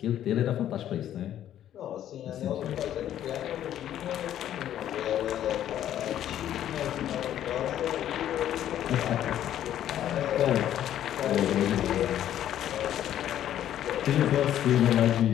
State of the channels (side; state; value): right; quieter; 11.3 dB